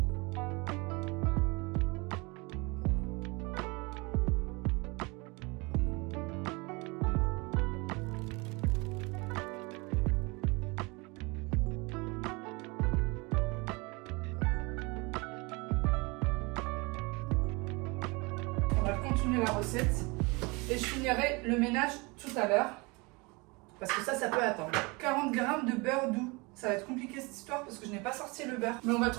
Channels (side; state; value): left; quieter; 27.0 dB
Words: On va continuer la recette et je finirai le ménage tout à l'heure parce que ça peut attendre. 40 grammes de beurre doux. Ça va être compliqué cette histoire parce que je n'ai pas sorti le beurre, mais on va